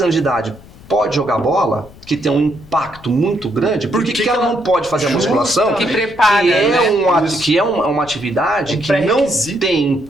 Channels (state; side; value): noise; left; rumble, 21 dB below the sound